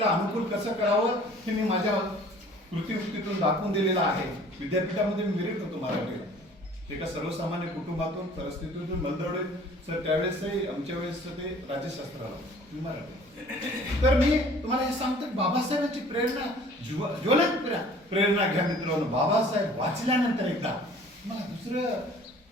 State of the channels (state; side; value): normal; both; correlation 0.51